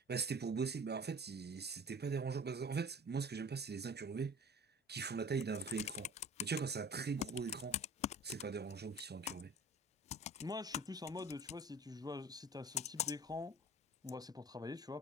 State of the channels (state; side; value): normal; both; correlation 0.43